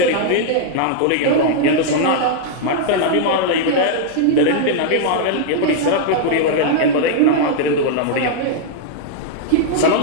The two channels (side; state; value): both; different; correlation -0.01